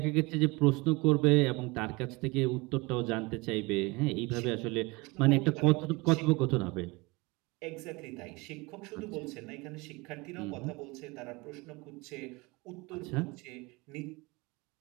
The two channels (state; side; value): quieter; left; 25.0 dB